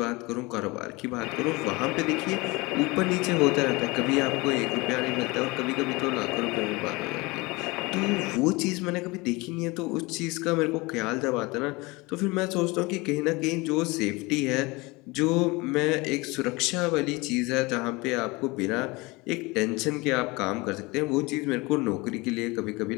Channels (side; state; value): right; quieter; 24.2 dB